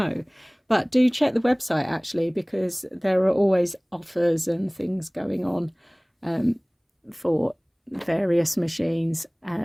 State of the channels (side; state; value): both; identical; correlation 1.00